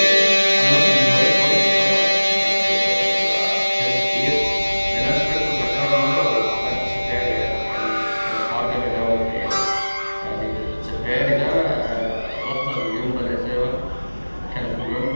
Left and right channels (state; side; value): inverted; both; correlation -1.00